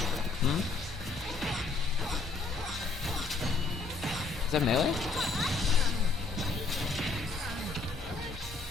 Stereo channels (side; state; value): right; quieter; 4.0 dB